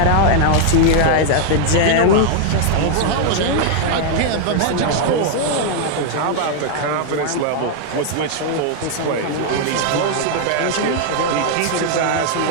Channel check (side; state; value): both; different; correlation 0.00